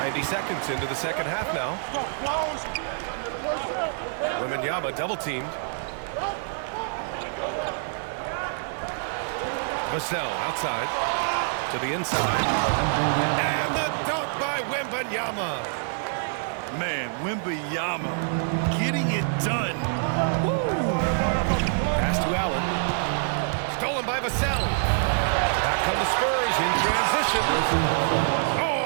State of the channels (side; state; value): left; silent; digital silence